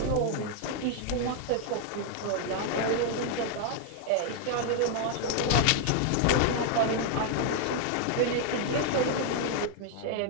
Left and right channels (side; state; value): both; different; correlation 0.00